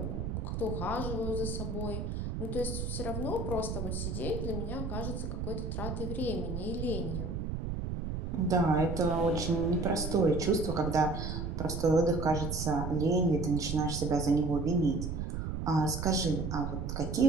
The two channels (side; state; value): right; noise; rumble, 3 dB below the sound